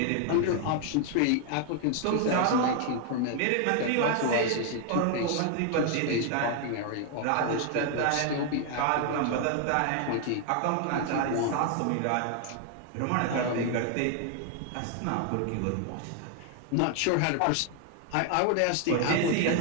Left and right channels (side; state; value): both; different; correlation 0.00